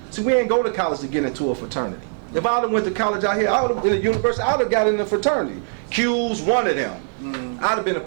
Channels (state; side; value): silent; left; digital silence